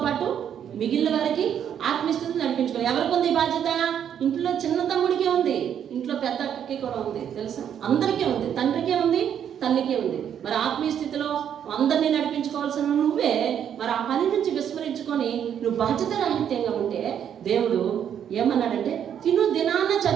పాటు మిగిలిన వారికి ఆత్మీయ స్థితిని నడిపించుకోవాలి. ఎవరికి ఉంది బాధ్యత? ఇంట్లో చిన్న తమ్ముడికే ఉంది, ఇంట్లో పెద్ద అక్కకి కూడా ఉంది. తెలుసా? అందరికీ ఉంది. తండ్రికే ఉంది, తల్లికే ఉంది. మరి ఆత్మీయ స్థితిలో అందరినీ నడిపించుకోవాల్సిన నువ్వే మరి ఆ పని నుంచి విస్మరించుకో ఉంచుకొని నువ్వు బాధ్యత రాహిత్యంగా ఉంటే దేవుడు ఏమన్నాడంటే తిను దినాన్నే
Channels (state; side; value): quieter; left; 9.0 dB